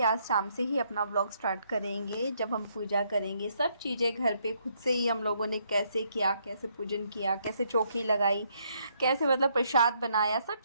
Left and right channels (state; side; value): inverted; both; correlation -0.72